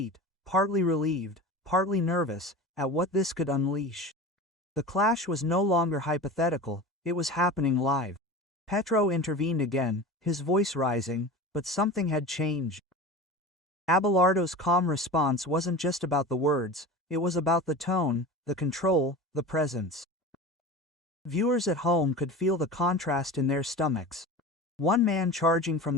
partly relieved, partly nervous, at what this could unleash. The clash was no longer hypothetical, it was happening live. Petro intervened again, his voice rising, but something had changed. Abelardo's calm response wasn't just about the words, it was about the tone, the control, the presence. Viewers at home could feel the contrast in their stomachs. One man charging from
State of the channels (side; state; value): both; normal; correlation 0.32